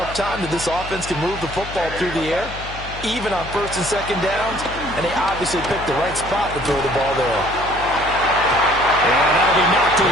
time that this offense can move the football through the air, even on 1st and 2nd downs, and they obviously picked the right spot to throw the ball there. And that'll be knocked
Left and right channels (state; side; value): noise; left; hum, 12 dB below the sound